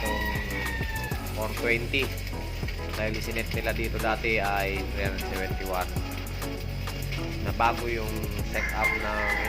420 dahil isinet nila dito dati ay 371 na bago yung setup ng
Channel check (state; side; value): identical; both; correlation 1.00